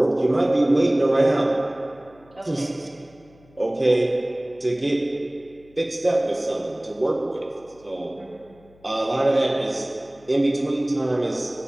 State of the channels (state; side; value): noise; left; hum, 28 dB below the sound